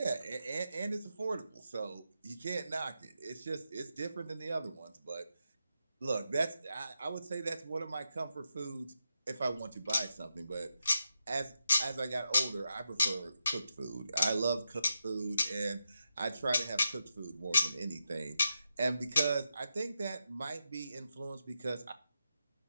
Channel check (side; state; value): both; inverted; correlation -0.86